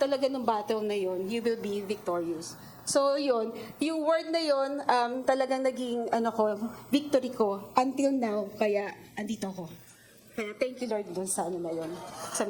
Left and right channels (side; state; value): both; identical; correlation 1.00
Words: ng battle na yon, you will be victorious. So yun, yung word na yun, talagang naging victory ko until now. Kaya andito ako. Kaya thank you Lord dun sa na yun, sa